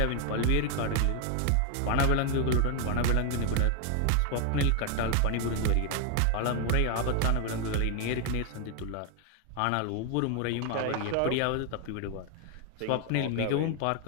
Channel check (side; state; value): both; different; correlation 0.01